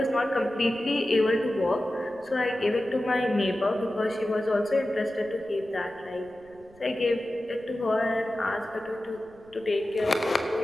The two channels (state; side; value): noise; right; rumble, 28 dB below the sound